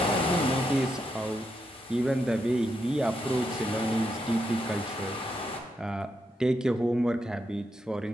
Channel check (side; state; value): both; normal; correlation 0.82